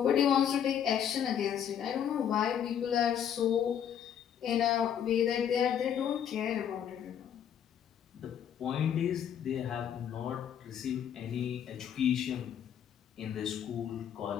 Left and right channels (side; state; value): right; quieter; 9.0 dB